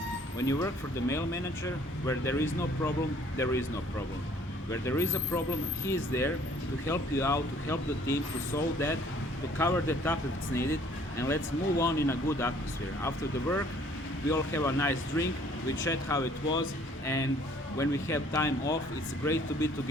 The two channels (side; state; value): both; normal; correlation 0.58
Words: When you work for the male manager, where there is no problem, there is no problem. Where there is a problem, he is there to help you out, to help the team, to solve that, to cover that up if it's needed, and let's move on in a good atmosphere. After the work, we all have a nice drink, we chat how it was, and when we have time off, it's great to be